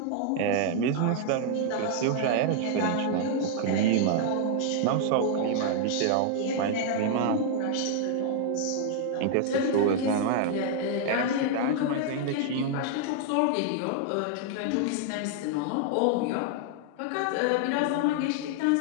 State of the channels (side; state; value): both; different; correlation 0.00